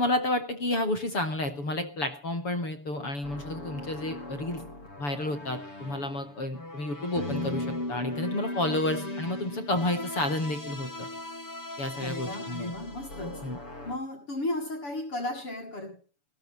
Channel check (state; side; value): late; right; 7.0 ms